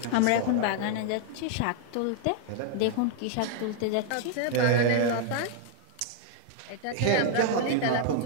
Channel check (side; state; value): both; different; correlation 0.00